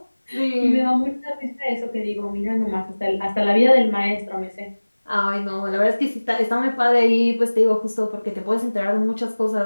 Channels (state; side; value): inverted; both; correlation -1.00